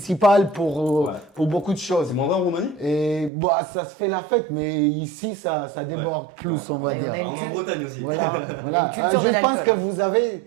pour beaucoup de choses. C'est moins vrai en Roumanie? Et bah, ça se fait la fête, mais ici, ça déborde plus, on va dire. On est en Bretagne aussi. Voilà. Je pense que vous avez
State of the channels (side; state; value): left; drops out; at 3.3 s